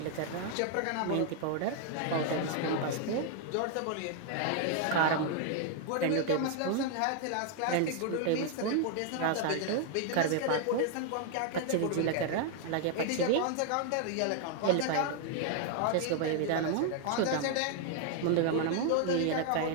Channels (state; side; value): different; both; correlation 0.00